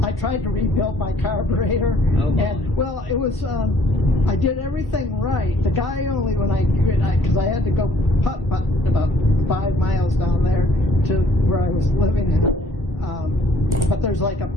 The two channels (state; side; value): normal; both; correlation 0.60